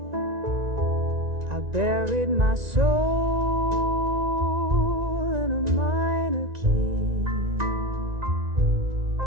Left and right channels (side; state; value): left; late; 1.9 ms